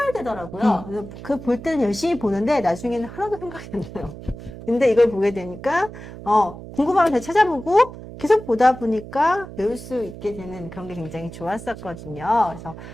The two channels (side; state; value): right; noise; hum, 13 dB below the sound